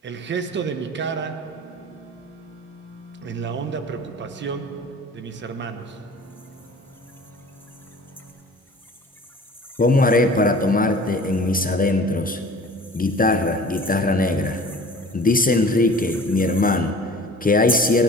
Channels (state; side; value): normal; both; correlation 0.44